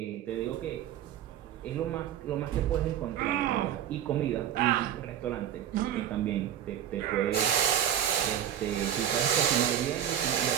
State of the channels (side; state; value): left; quieter; 10.2 dB